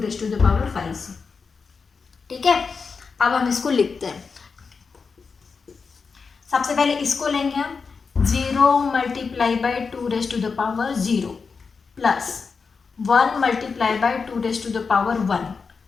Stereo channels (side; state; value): right; quieter; 5.1 dB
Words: टू द पावर 5 से। ठीक है, अब हम इसको लिखते हैं। सबसे पहले इसको लेंगे हम, 0 multiply by 2 raise to the power 0 plus 1 multiply by 2 raise to the power 1